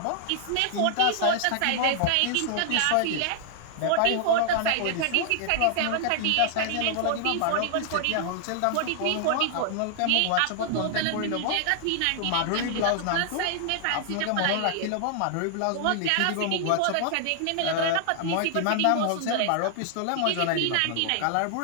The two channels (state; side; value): different; both; correlation 0.00